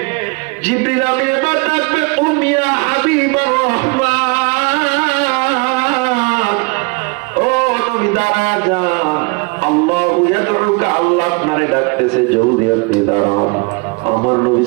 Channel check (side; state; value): left; quieter; 29.7 dB